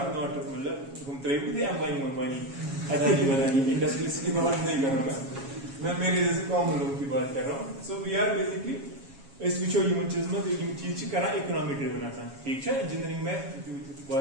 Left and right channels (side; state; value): left; late; 7.3 ms